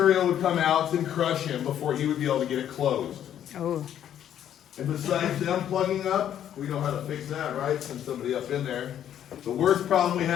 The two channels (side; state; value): right; quieter; 10.3 dB